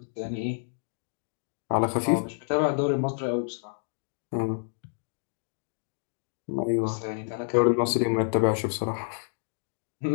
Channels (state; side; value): silent; right; digital silence